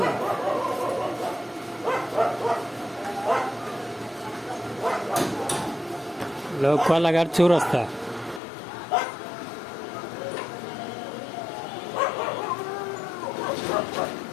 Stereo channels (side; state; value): right; drops out; at 8.4 s